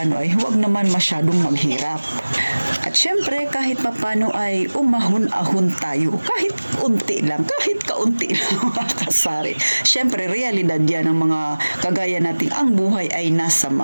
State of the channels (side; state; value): both; inverted; correlation -1.00